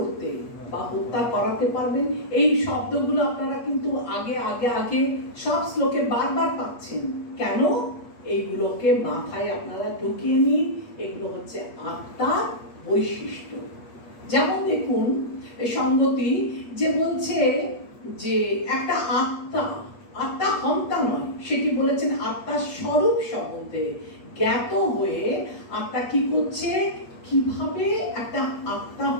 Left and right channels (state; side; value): late; right; 8.4 ms